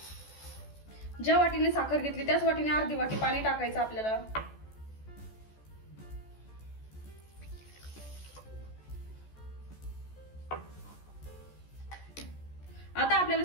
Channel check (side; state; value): right; late; 14 ms